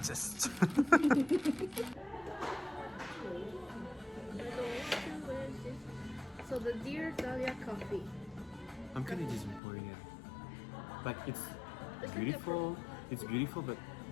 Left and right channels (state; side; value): drops out; right; at 9.6 s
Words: So the Dear Dahlia coffee. I'm kind of disappointed. Like it's It's beautiful. It's beautiful, but